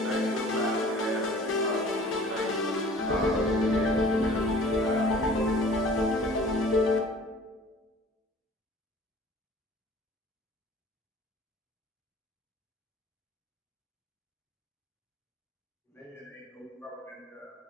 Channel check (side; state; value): both; normal; correlation 0.48